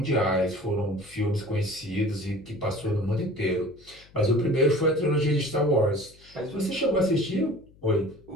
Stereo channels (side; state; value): left; noise; hum, 26 dB below the sound